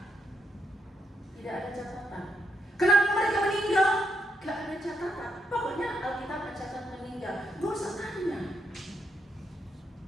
Tidak ada catatan. Kenapa mereka meninggal? Gak ada catatan. Pokoknya Alkitab mencatat meninggal. Gak usah tanya.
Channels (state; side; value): normal; both; correlation 0.79